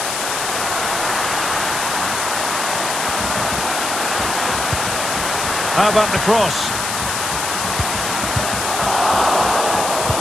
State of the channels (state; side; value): noise; left; hiss, 3 dB below the sound